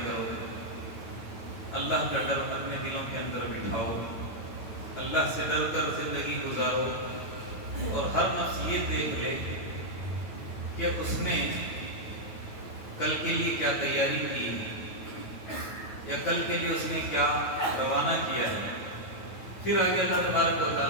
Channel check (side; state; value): right; late; 9.3 ms